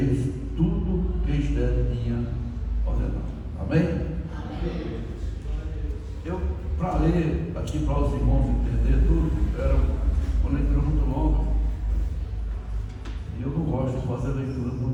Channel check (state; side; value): identical; both; correlation 1.00